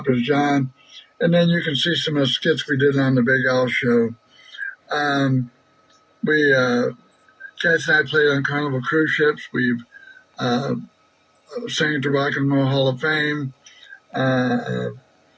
is John, and then you can see some of the skits we did on the Big Al Show. Kathy and I played on Carnival cruise ships. We've sang at the Rock and Roll Hall of Fame.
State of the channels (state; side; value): identical; both; correlation 1.00